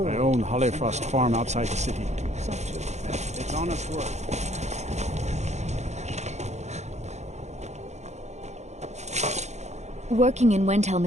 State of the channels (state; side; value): late; left; 0.33 ms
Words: I own Hollyfrost Farm outside the city. It's honest work. Working in Wendhelm